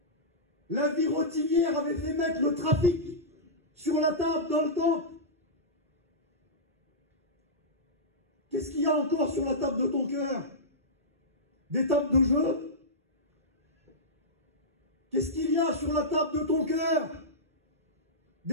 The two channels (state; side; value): normal; both; correlation -0.13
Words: La vie rotinière avait fait mettre le trafic sur la table dans le temple. Qu'est-ce qu'il y a encore sur la table de ton cœur? Des tables de jeu? Qu'est-ce qu'il y a sur la table de ton cœur?